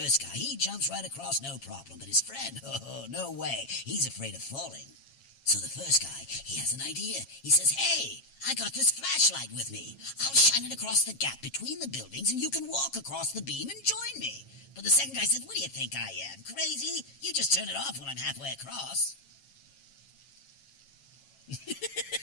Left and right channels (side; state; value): right; late; 7.3 ms